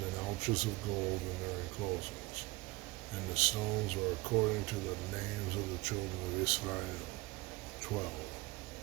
in ouches of gold in their enclosings. And the stones were according to the names of the children of Israel, 12,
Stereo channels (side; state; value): left; quieter; 22.6 dB